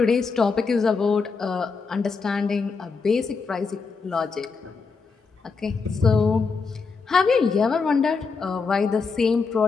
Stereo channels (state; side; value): quieter; right; 4.8 dB